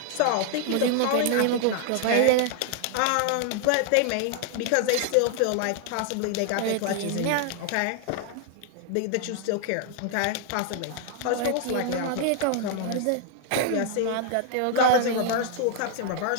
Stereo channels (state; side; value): different; both; correlation 0.00